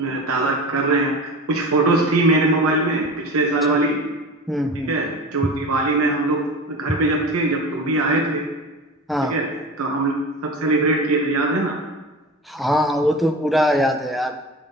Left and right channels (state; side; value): normal; both; correlation 0.32